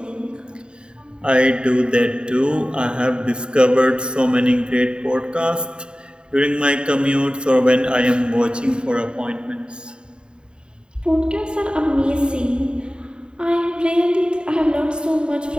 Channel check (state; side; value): late; left; 0.050 ms